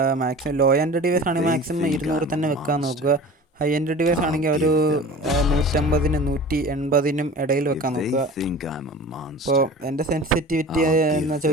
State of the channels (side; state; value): both; normal; correlation 0.38